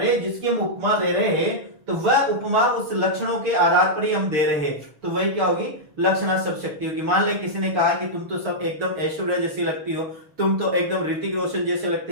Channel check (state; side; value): late; left; 6.6 ms